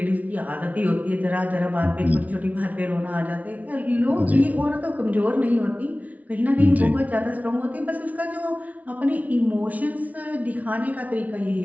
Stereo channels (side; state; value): left; late; 0.071 ms